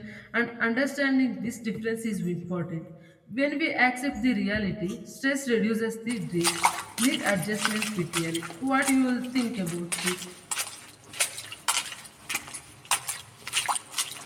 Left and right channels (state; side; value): identical; both; correlation 1.00